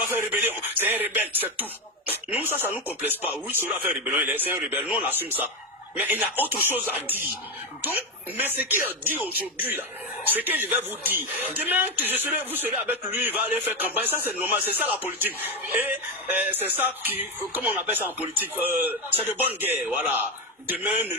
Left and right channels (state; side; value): normal; both; correlation 0.13